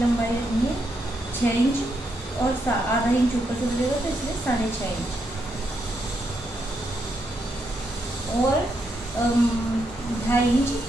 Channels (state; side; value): normal; both; correlation 0.80